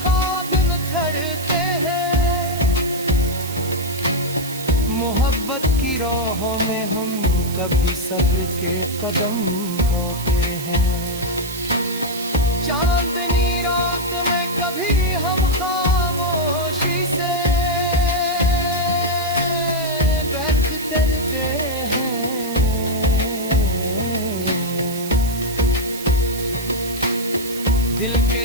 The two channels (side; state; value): right; noise; hiss, 11 dB below the sound